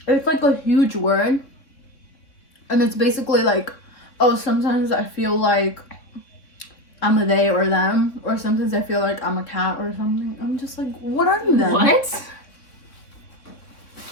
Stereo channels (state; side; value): late; right; 3.6 ms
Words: It's like a huge word, and it's basically like, oh, sometimes I feel like I'm a they or them, or sometimes I feel like I'm a cat or something. I'm just like, what are you then? What?